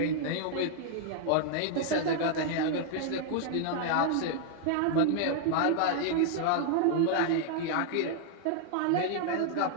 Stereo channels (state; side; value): different; both; correlation -0.01